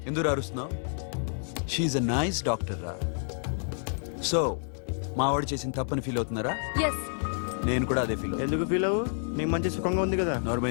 ఎందుకు అరుస్తున్నావు? షీఈ్ అ నైస్ డాక్టర్ రా. సో మా వాడు చేసిన తప్పని ఫీల్ అవుతున్నారా? ఎస్. నేను కూడా అదే ఫీల్. ఎందుకు ఫీల్ అవ్వు? నీకు మంచి సుఖంగా ఉంది కదా.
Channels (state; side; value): silent; right; digital silence